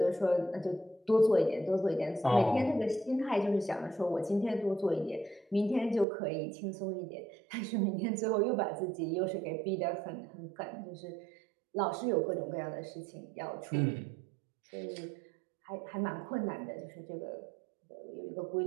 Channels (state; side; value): drops out; left; at 6.1 s